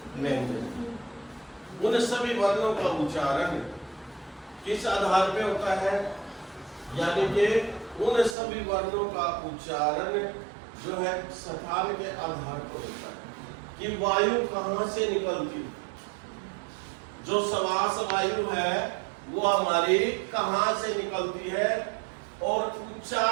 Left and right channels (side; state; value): left; drops out; at 8.3 s